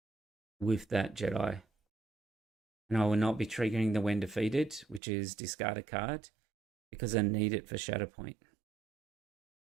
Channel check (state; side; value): drops out; left; at 5.0 s